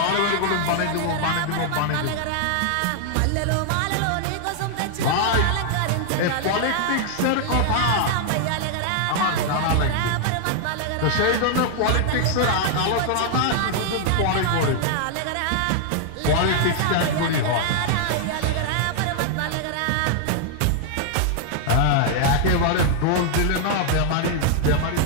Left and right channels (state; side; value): different; both; correlation 0.00